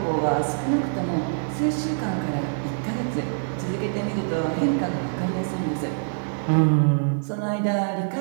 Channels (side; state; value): left; silent; digital silence